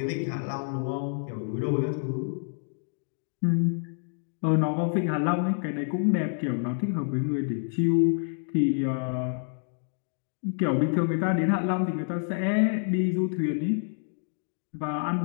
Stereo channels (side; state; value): right; silent; 59 dB below the other